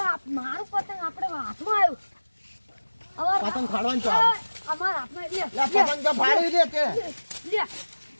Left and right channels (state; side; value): inverted; both; correlation -1.00